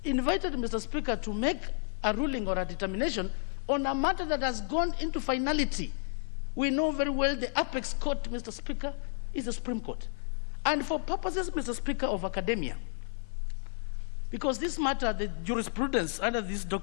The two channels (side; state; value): right; silent; 57 dB below the other